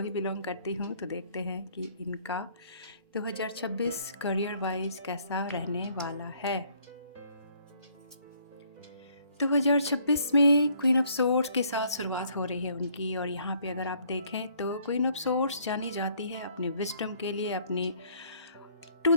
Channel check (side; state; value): both; inverted; correlation -0.63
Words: बिलोंग करती हूँ तो देखते हैं कि इनका 2026 करियर वाइज कैसा रहने वाला है। 2026 में क्वीन ऑफ सोर्ड्स के साथ शुरुआत हो रही है उनकी, और यहाँ पे अगर आप देखें तो क्वीन ऑफ सोर्ड्स जानी जाती है अपने विजडम के लिए, अपनी टू